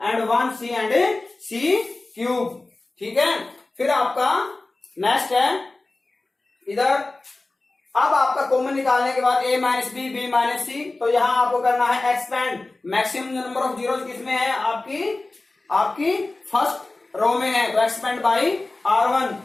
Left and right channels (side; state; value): right; quieter; 3.1 dB